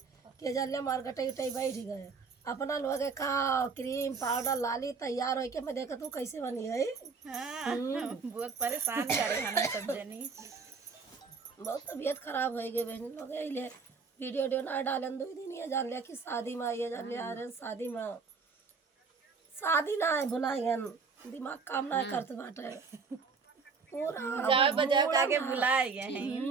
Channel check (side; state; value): left; quieter; 5.0 dB